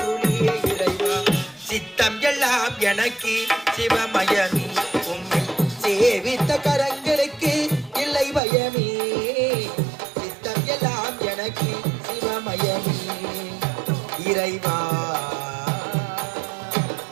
இறைவா சித்தம் எல்லாம் எனக்கு சிவமயமே உம்மை சேவித்த கரங்களுக்கு இல்லை பயமே சித்தம் எல்லாம் எனக்கு சிவமயமே இறைவா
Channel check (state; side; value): drops out; left; at 8.4 s